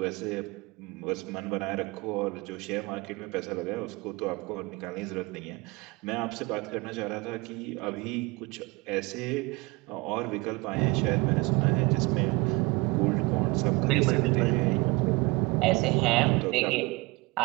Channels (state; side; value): quieter; left; 25.0 dB